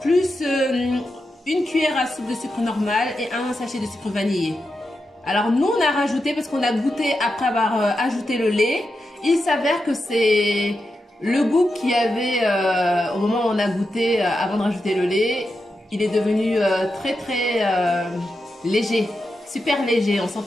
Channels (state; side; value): normal; both; correlation 0.88